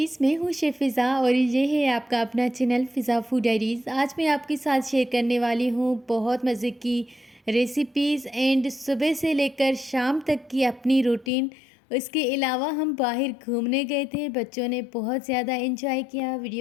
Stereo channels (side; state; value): right; drops out; at 11.3 s